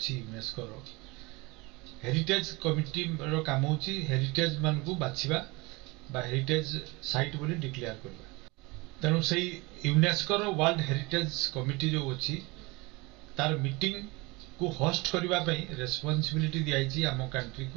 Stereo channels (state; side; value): quieter; left; 25.0 dB